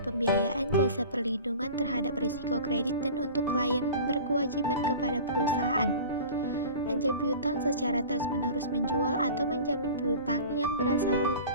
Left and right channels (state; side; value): inverted; both; correlation -0.38